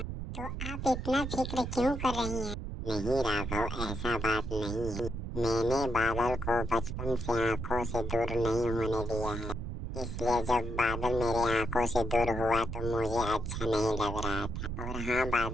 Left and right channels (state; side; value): noise; right; rumble, 5 dB below the sound